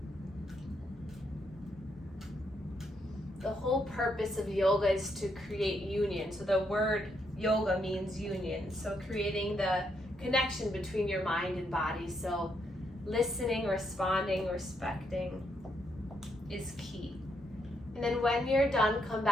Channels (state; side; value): normal; both; correlation 0.77